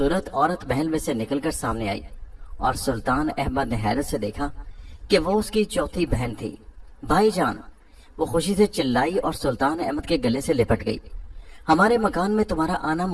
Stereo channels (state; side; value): identical; both; correlation 1.00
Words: عورت محل میں سے نکل کر سامنے آئی اور سلطان احمد نے حیرت سے دیکھا کہ وہ اس کی چوتھی بہن تھی۔ بھائی جان، وہ خوشی سے چلائی اور سلطان احمد کے گلے سے لپٹ گئی۔ ہمارے مکان میں تمہارا آنا